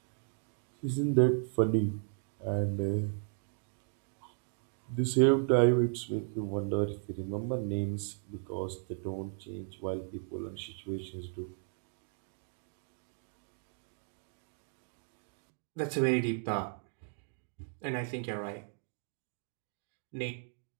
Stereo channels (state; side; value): silent; left; 54 dB below the other